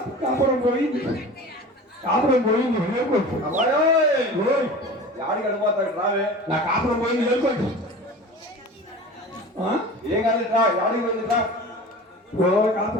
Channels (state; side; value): normal; both; correlation 0.37